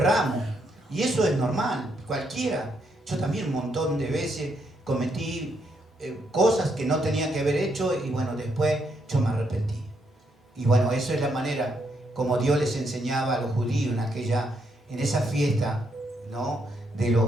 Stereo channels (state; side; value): normal; both; correlation 0.76